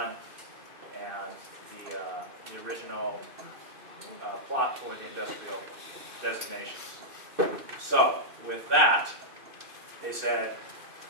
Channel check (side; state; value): left; late; 2.6 ms